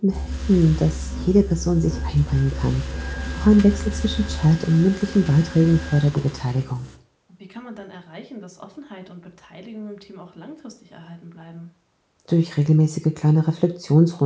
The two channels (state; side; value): identical; both; correlation 1.00